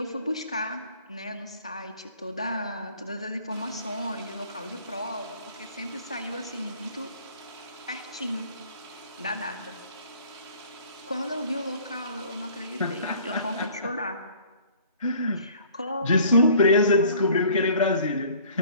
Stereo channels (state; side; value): inverted; both; correlation -0.52